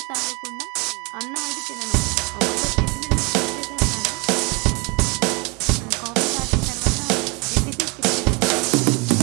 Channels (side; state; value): left; quieter; 30.0 dB